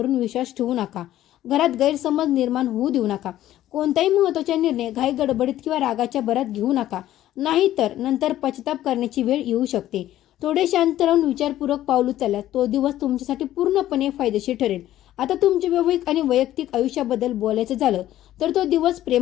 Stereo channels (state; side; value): quieter; right; 13.4 dB